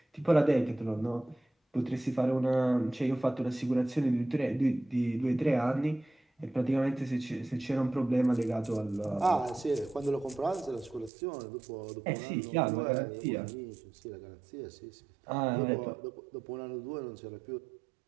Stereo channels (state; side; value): drops out; left; at 11.1 s